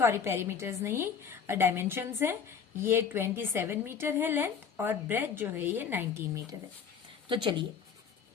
पेरीमीटर्स नहीं, डायमेंशंस है। ये 27 मीटर है लेंथ और ब्रेथ जो है ये 19 मीटर है। तो चलिए,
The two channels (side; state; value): right; quieter; 6.7 dB